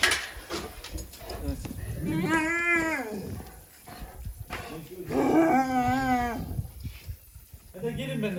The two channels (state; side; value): identical; both; correlation 1.00